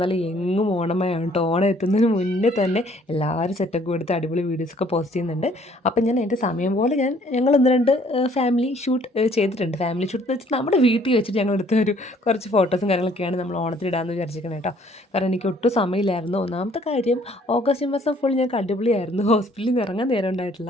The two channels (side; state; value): both; normal; correlation 0.60